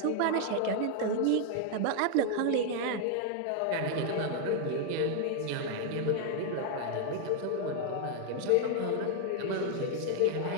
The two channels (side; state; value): both; different; correlation 0.00